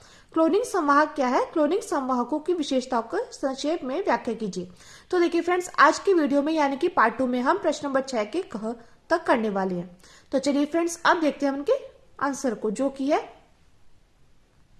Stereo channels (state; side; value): identical; both; correlation 1.00